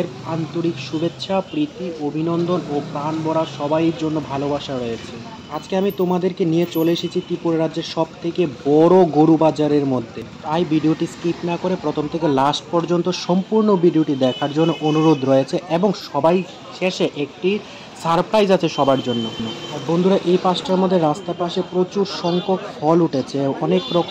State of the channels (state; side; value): identical; both; correlation 1.00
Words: আন্তরিক শুভেচ্ছা, প্রীতি, অভিনন্দন ও প্রাণ ভরা সবাইয়ের জন্য ভালোবাসা রয়েছে। আজকে আমি তোমাদেরকে নিয়ে চলে এসেছি ত্রিপুরা রাজ্যের সব থেকে বড় গরু বাজারের মধ্যে। তাই ভিডিওটি স্কিপ না করে প্রথম থেকে লাস্ট পর্যন্ত সম্পূর্ণ ভিডিওটি দেখার জন্য অনুরোধ রয়েছে এবং সবাই শেষে একটি সারপ্রাইজ আছে সবার জন্য। আর বন্ধুরা, এই পাশটার মধ্যে রাস্তার পাশে প্রচুর সংখ্যক ফল উঠেছে, অনেক